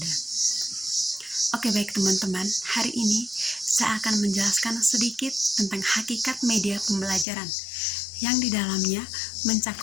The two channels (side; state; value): right; drops out; at 7.2 s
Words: Oke baik teman-teman, hari ini saya akan menjelaskan sedikit tentang hakikat media pembelajaran yang di dalamnya